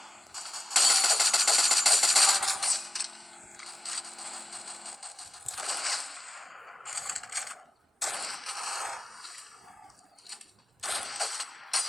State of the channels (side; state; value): both; normal; correlation 0.96